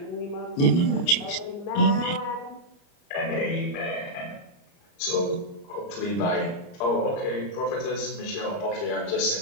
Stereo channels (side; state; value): right; late; 29 ms